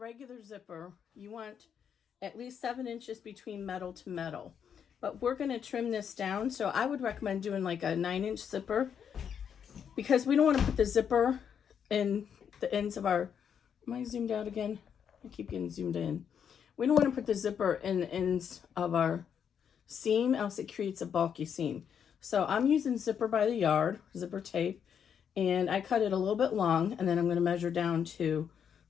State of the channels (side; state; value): right; quieter; 7.9 dB